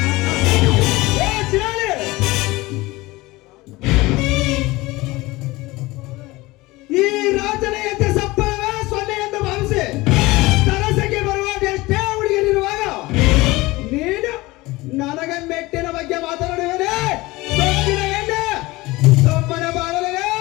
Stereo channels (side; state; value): right; quieter; 20.8 dB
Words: ಏ ಚಿರಾಳಿ, ಈ ರಾಜನ ಎದ್ದ ಸಪ್ಪಳವೇ ಸೊನ್ನೆ ಎಂದು ಭಾವಿಸಿ ತರಸಕ್ಕೆ ಬರುವ ಎಷ್ಟೇ ಹುಡುಗಿಯರಿರುವಾಗ ನೀನು ನನಗೆ ಮೆಟ್ಟಿನ ಬಗ್ಗೆ ಮಾತನಾಡುವನೇ? ಸೊಕ್ಕಿನ ಎಣ್ಣೆ ಸೊಮ್ಮನ ಬಾಳಲೇ.